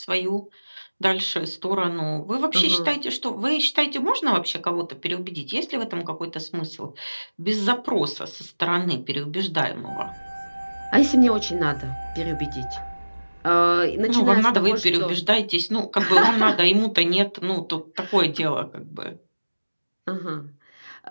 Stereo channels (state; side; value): inverted; both; correlation -1.00